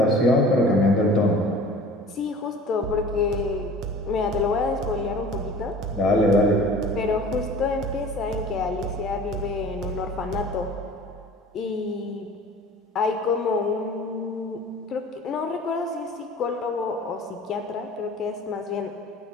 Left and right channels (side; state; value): both; normal; correlation 0.43